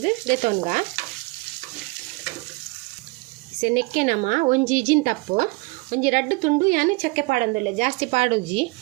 ದೆತೊನ್ಗ ಸೆ ನೆಕ್ಕೆ ನಮ ಒಂಜಿ ಇಜಿನ್ ತಪ್ಪು ಒಂಜಿ 2 ತುಂಡು ಯಾನು ಚಕ್ಕೆ ಪಾಡೊಂದುಲ್ಲೆ ಜಾಸ್ತಿ ಪಾಡೋಜಿ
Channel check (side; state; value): left; quieter; 25.8 dB